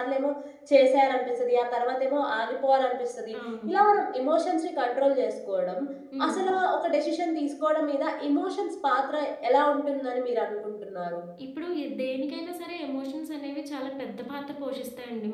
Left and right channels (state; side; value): identical; both; correlation 1.00